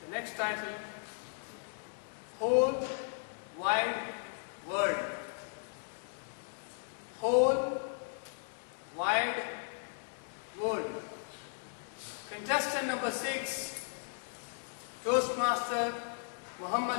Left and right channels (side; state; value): right; silent; digital silence